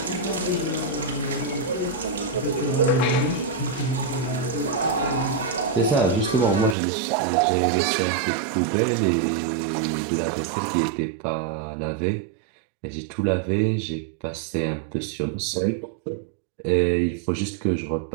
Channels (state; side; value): drops out; left; at 6.8 s